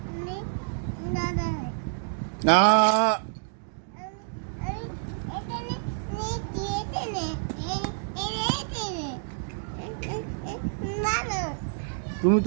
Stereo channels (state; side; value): silent; left; digital silence